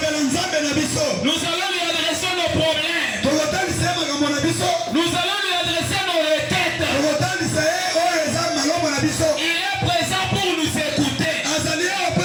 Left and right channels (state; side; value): identical; both; correlation 1.00